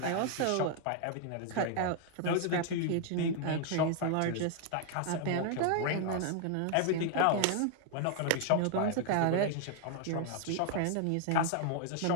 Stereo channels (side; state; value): both; different; correlation 0.00